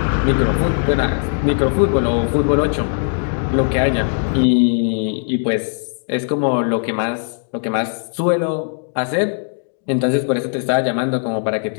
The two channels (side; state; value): right; silent; digital silence